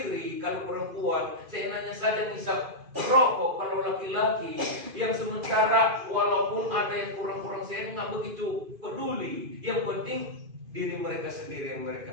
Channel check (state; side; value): late; left; 2.5 ms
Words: kalau perempuan, seenaknya saja ngisap rokok kalau laki-laki. Yang sementara walaupun ada yang kurang-kurang saya nggak begitu peduli. Yang penting diri mereka sendiri yang